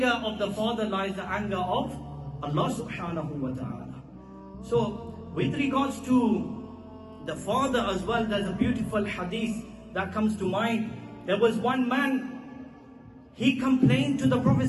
of the father lies the anger of Allah subhanahu wa ta'ala. So, with regards to the father as well, there's a beautiful hadith that comes to mind. There was one man, he complained to the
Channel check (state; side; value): identical; both; correlation 1.00